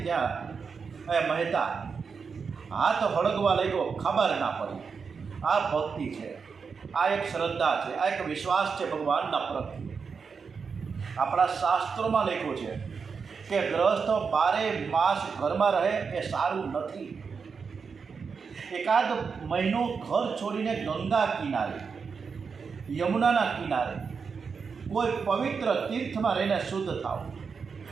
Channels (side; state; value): left; quieter; 5.6 dB